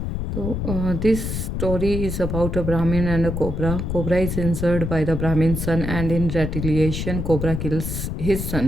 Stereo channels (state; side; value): noise; left; rumble, 3 dB below the sound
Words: So, this story is about a Brahmin and a cobra. Cobra is injured by the Brahmin's son and in retaliation cobra kills his